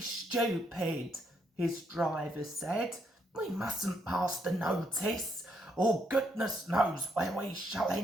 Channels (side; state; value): both; normal; correlation 0.75